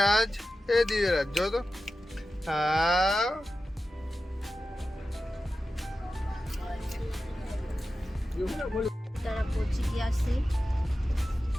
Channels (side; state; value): both; normal; correlation 0.93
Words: દિવ્યરાજ જો તો હા તારા પહોંચી ગયા છે.